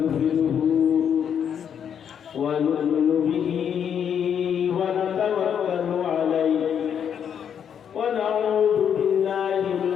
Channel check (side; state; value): right; quieter; 8.2 dB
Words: ونؤمن به ونتوكل عليه ونعوذ بالله